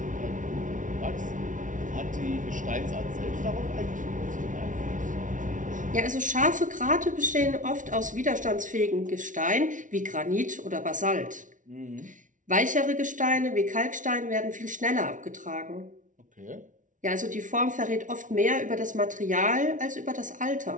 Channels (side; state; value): left; late; 0.37 ms